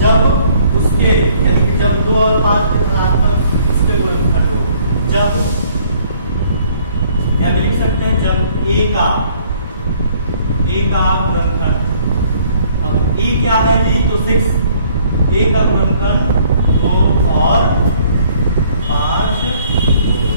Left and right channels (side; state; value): both; inverted; correlation -0.60